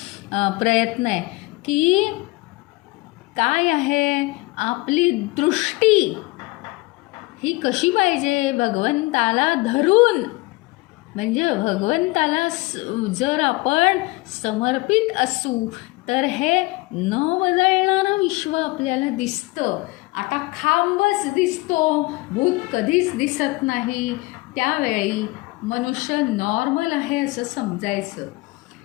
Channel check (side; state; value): right; quieter; 23.2 dB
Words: आहे की काय आहे आपली दृष्टी ही कशी पाहिजे? भगवंताला धरून, म्हणजे भगवंताला जर आपण समर्पित असू तर हे न बदलणारं विश्व आपल्याला दिसतं. आता खांबच दिसतो, भूत कधीच दिसत नाही. त्यावेळी मनुष्य नॉर्मल आहे असं समजायचं.